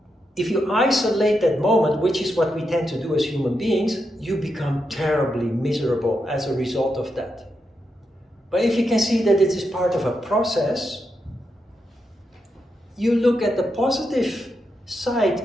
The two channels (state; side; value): normal; both; correlation 0.85